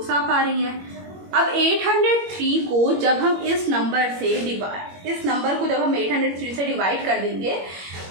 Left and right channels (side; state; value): left; late; 21 ms